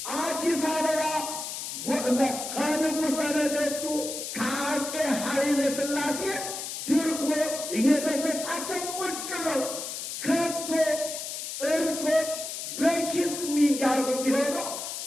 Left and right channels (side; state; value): left; noise; hiss, 6 dB below the sound